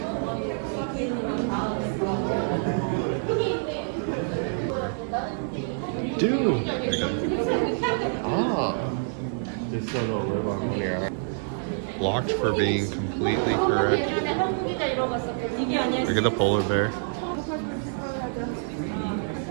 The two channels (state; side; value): silent; left; 60 dB below the other